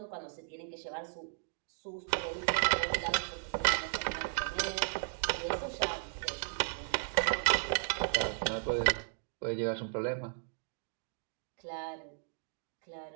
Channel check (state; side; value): silent; left; digital silence